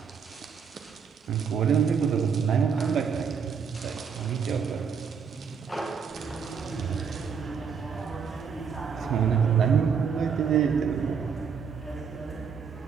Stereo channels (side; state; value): left; quieter; 6.4 dB